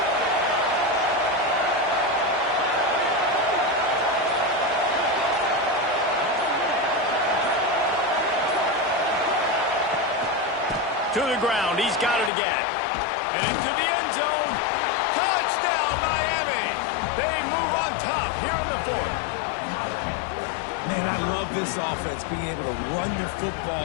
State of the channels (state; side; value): drops out; right; at 12.3 s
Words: To the ground, he's got it again. And into the end zone. Touchdown, Miami! They move on top here in the 4th. Man, I love this offense, being able to run the